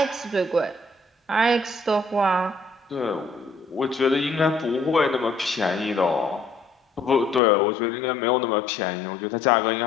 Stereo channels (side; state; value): right; drops out; at 7.4 s